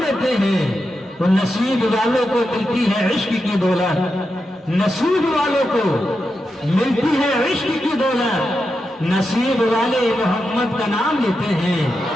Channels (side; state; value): both; normal; correlation 0.88